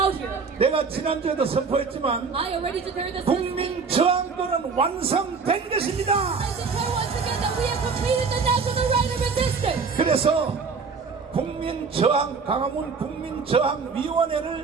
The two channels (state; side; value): quieter; left; 5.1 dB